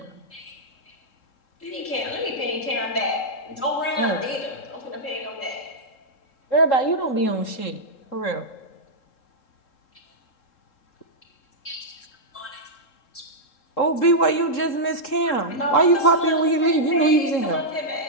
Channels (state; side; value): late; right; 3.7 ms